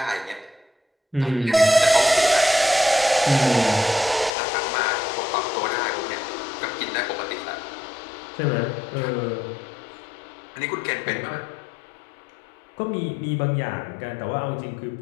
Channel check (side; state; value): right; drops out; at 4.3 s